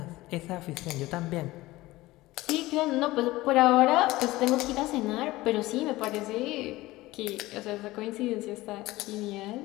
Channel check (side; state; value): right; quieter; 18.6 dB